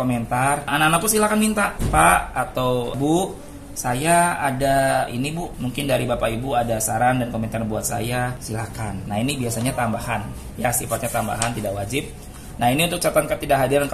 Anak-anakku silahkan minta, Pak atau Bu, saya ada ini Bu, mungkin dari Bapak Ibu ada saran dan komentar buat saya, silakan. Nah ini biasanya tambahan, ya sifatnya tambahan, tidak wajib. Nah ini untuk catatan ketidakhadiran,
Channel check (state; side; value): identical; both; correlation 1.00